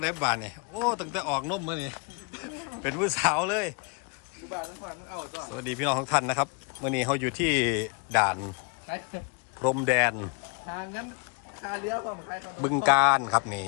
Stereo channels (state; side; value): quieter; right; 34.7 dB